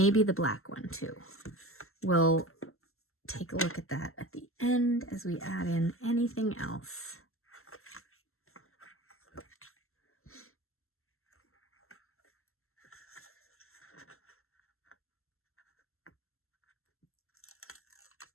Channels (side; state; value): right; late; 0.62 ms